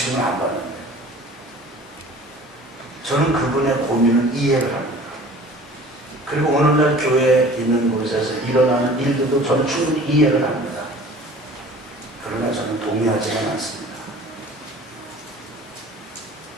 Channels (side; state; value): both; normal; correlation 0.45